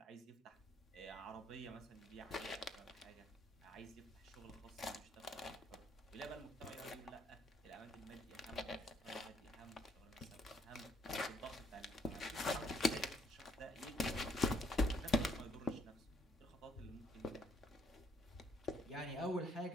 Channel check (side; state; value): both; normal; correlation 0.69